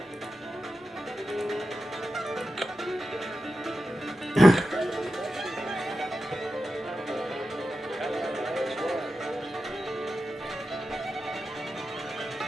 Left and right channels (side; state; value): both; normal; correlation 0.91